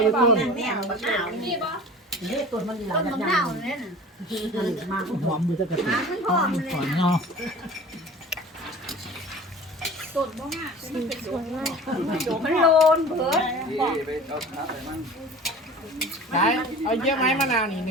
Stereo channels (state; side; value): normal; both; correlation 0.40